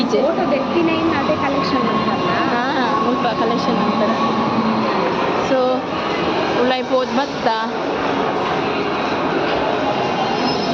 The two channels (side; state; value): both; identical; correlation 1.00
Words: ಫೋಟೋ ತೆಕ್ಕಿನ ಇನ್ನು ಅದೇ ಕಲೆಕ್ಷನ್ ಅಂತಲ್ಲ ಹಾಂ ಮುಲ್ಪ ಕಲೆಕ್ಷನ್ ಅಂತಾರೆ ಸೊ ಉಳ್ಳಾಯಿ ಪೋದ್ ಭತ್ತ